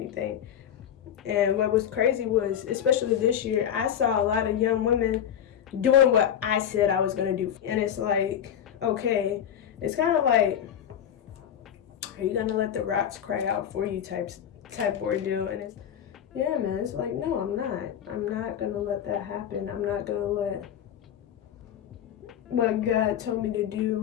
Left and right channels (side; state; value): right; quieter; 9.5 dB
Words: And what was crazy was, especially this year, I saw a lot of young women doing what I said I was going to do. And it's like, okay, it's kind of like, are you going to let the rocks cry out for you type ordeal? And it's, yeah, man, it's like, no, I'm not. I'm not going to let that happen. I'm not going to let what God told me to